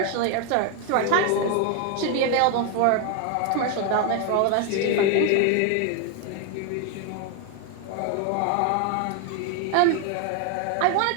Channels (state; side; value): different; both; correlation 0.01